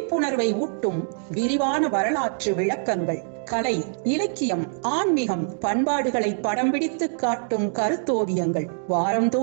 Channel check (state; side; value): silent; left; digital silence